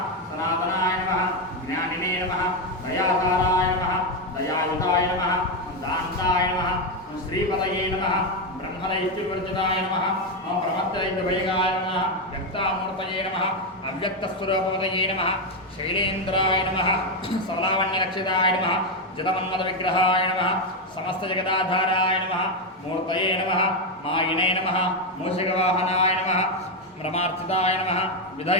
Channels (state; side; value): normal; both; correlation 0.07